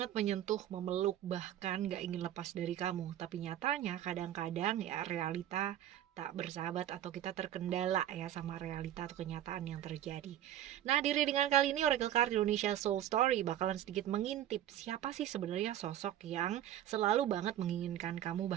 menyentuh, memeluk, bahkan gak ingin lepas dari kamu. Tapi nyatanya kadang-kadang ya realita tak bersahabat atau kita terkendala ya sama realita atau kenyataan yang terjadi. Nah, di readingan kali ini Oracle Card Indonesia Soul Story bakalan sedikit mengintip siapa sih sebenarnya sosok yang selalu banget menginginkan kamu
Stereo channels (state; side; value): quieter; left; 11.8 dB